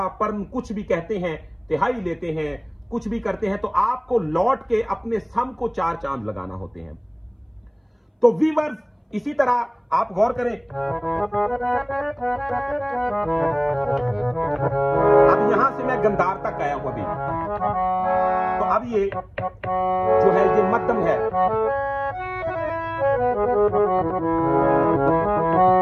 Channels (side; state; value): both; identical; correlation 1.00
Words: पर्न कुछ भी कहते हैं, तिहाई लेते हैं, कुछ भी करते हैं, तो आपको लौट के अपने सम को चार चांद लगाना होते हैं। तो वीवर्स, इसी तरह आप गौर करें, अब यहां से मैं गंधार तक आया हूं अभी, तो अब ये जो है ये मध्यम है।